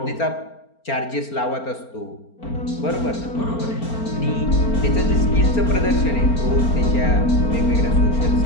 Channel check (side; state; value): right; late; 4.4 ms